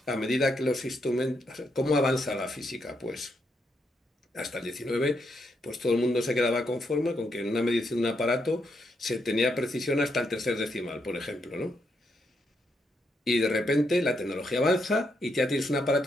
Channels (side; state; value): both; normal; correlation 0.79